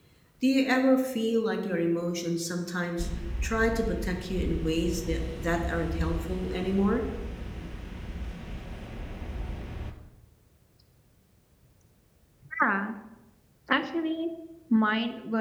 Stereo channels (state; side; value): identical; both; correlation 1.00